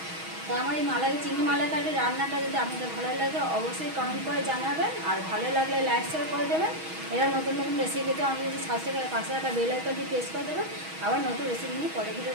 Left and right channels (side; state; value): left; late; 6.3 ms